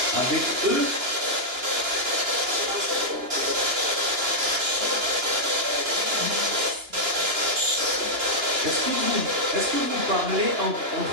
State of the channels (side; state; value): left; late; 2.9 ms